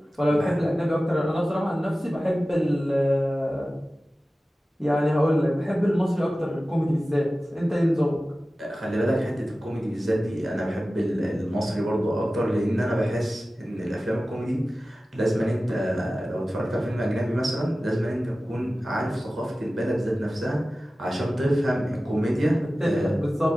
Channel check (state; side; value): normal; both; correlation 0.96